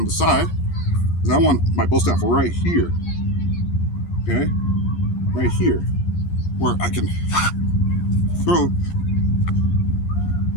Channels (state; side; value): late; right; 11 ms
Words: the side, is I want my bow staff right here. Okay? Right here. Where I can throw